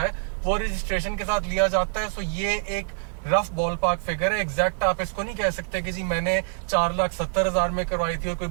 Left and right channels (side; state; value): left; silent; digital silence